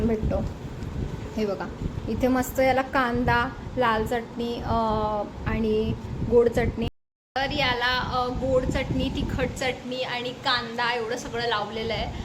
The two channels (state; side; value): identical; both; correlation 1.00